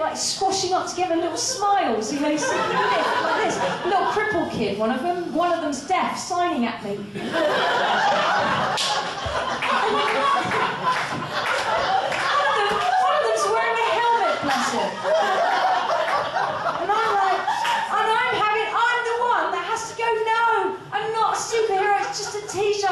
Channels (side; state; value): both; identical; correlation 1.00